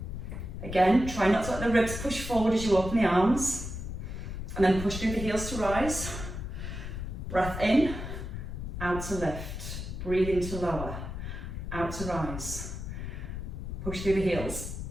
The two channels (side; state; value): left; noise; rumble, 7 dB below the sound